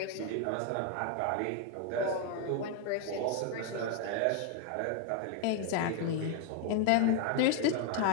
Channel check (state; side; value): different; both; correlation 0.01